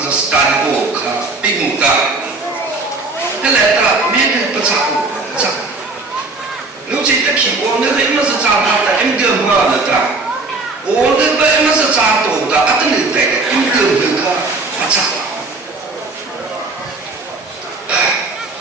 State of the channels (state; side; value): quieter; left; 3.5 dB